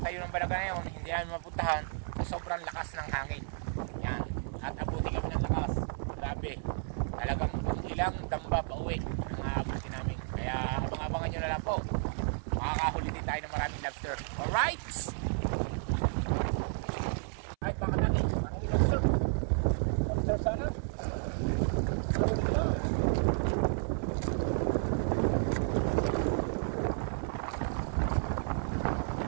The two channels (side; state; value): left; silent; 56 dB below the other